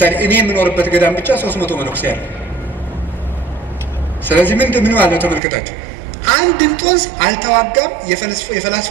እኔ የምኖርበት ገዳም ብቻ 300 መነኩሴ አለ። ስለዚህ ምን ማለት ነው ተመልከታችሁ። አንድ እንጦንስ አልተዋጋም።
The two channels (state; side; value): drops out; left; at 5.4 s